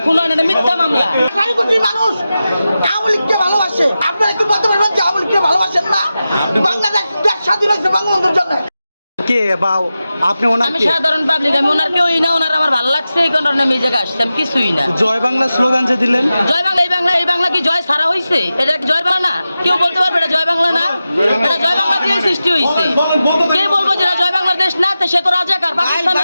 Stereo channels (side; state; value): both; inverted; correlation -0.93